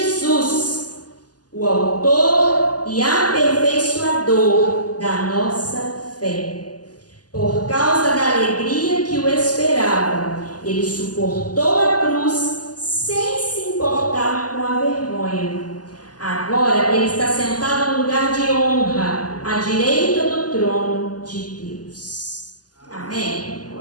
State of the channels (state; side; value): late; right; 0.68 ms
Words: o autor e aperfeiçoador da nossa fé. Por causa da alegria que o esperava, ele suportou a cruz sem se importar com a vergonha. Agora ele está sentado no lugar de honra, à direita do trono de Deus. Amém?